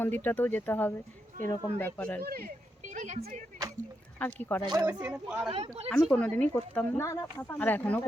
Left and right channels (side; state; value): both; normal; correlation 0.84